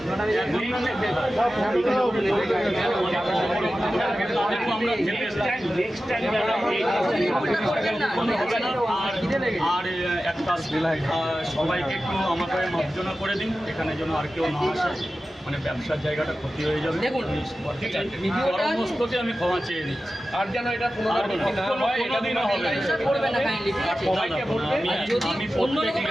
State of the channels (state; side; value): normal; both; correlation 0.94